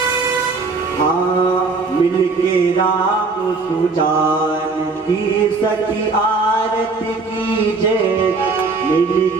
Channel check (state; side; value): quieter; left; 4.1 dB